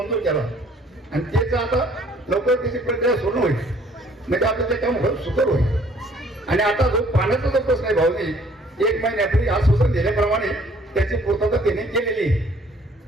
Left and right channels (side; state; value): both; normal; correlation 0.58